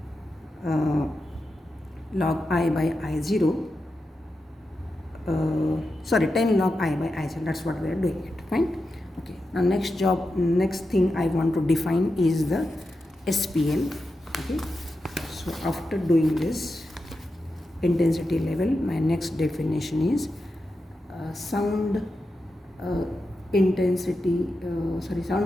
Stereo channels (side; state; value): both; normal; correlation 0.89